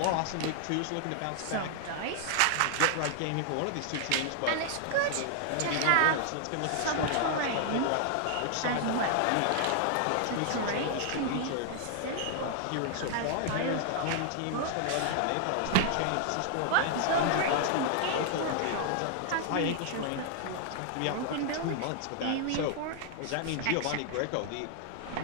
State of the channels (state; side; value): different; both; correlation -0.01